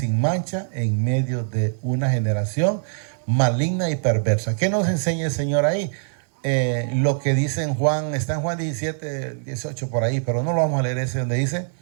mancha, en medio de una generación maligna y perversa. ¿Qué nos enseña el Señor ahí? Lo que dice en Juan, está en Juan 17, 18 por ahí, pero no lo vamos a leer ese, donde dice,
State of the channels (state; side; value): silent; left; digital silence